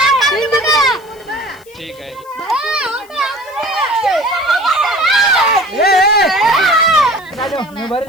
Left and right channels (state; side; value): noise; left; hiss, 27 dB below the sound